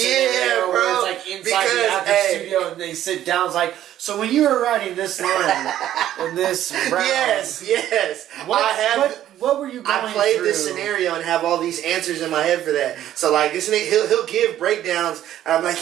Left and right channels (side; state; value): left; quieter; 12.1 dB